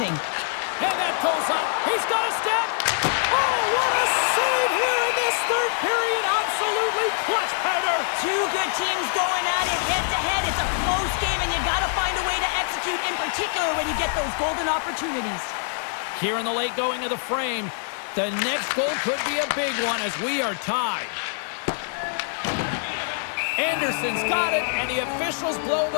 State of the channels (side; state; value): right; silent; digital silence